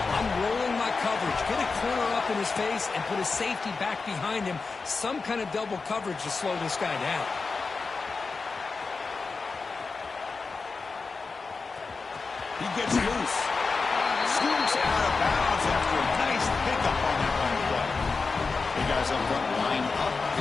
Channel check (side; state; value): right; quieter; 4.4 dB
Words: I'm rolling my coverage. Get a corner up in his face and put a safety back behind him. Some kind of double coverage to slow this guy down. He gets loose. Scoops out of bounds after a nice pickup on that one play. The guys up front line up.